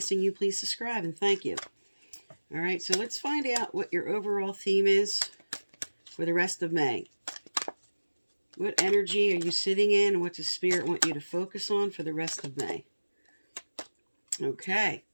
you please subscribe and thank you. All right, so let's find out what your overall theme is for the rest of May. What energy are you sitting in, and what does Spirit want you to focus on for the rest of May? Okay,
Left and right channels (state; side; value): inverted; both; correlation -1.00